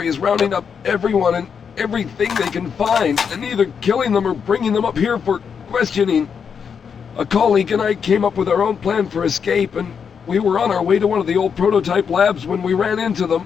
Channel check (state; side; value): quieter; right; 6.7 dB